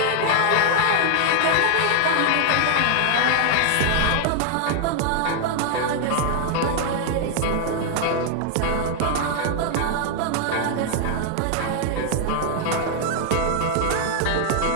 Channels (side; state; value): both; different; correlation 0.00